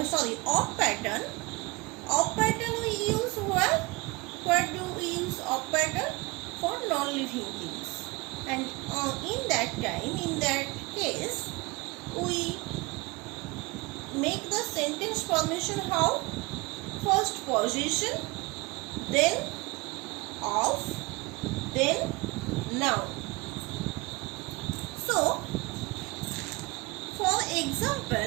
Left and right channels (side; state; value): left; quieter; 24.7 dB